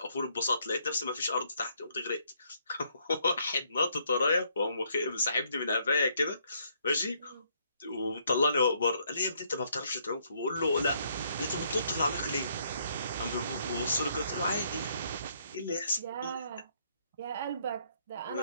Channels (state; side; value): inverted; both; correlation -0.69